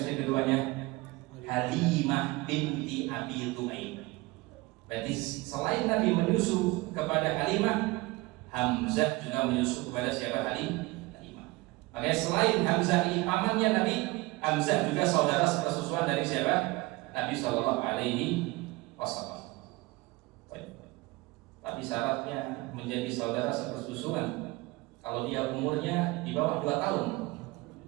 keduanya? Halimah binti Abi Tu'aib. Berarti selain Nabi menyusu kepada Halimah, Hamzah juga menyusu kepada siapa? Halimah. Makanya selain Hamzah ini pamannya Nabi, Hamzah juga saudara sepersusuan dari siapa? Nabi Shallallahu Alaihi Wasallam. Tapi syaratnya menjadi saudara sepersusuan kalau dia umurnya di bawah 2 tahun.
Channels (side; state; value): left; quieter; 22.1 dB